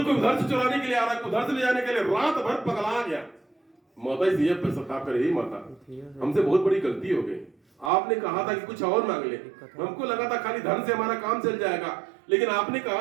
उधर से चुराने के लिए आ रहा है, कोई उधर से ले जाने के लिए, रात भर पगला गया। माता जी पर सता करे, ही माता हमसे बहुत बड़ी गलती हो गई। आपने कहा था कि कुछ और मांग ले, हमको लगा था खाली धन से हमारा काम चल जाएगा, लेकिन आपने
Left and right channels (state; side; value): drops out; left; at 7.9 s